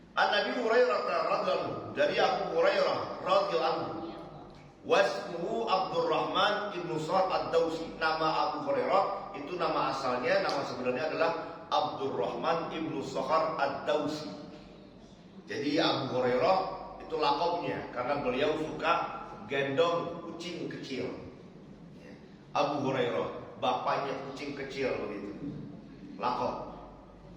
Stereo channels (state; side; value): identical; both; correlation 1.00